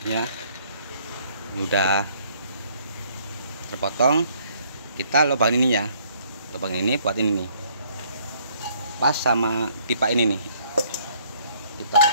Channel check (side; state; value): both; inverted; correlation -0.63